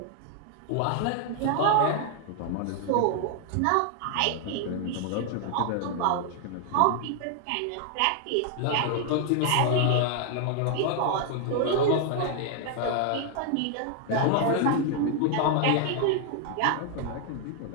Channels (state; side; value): different; both; correlation 0.00